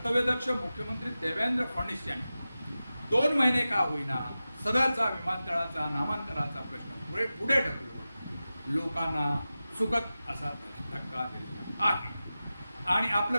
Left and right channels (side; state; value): both; inverted; correlation -0.94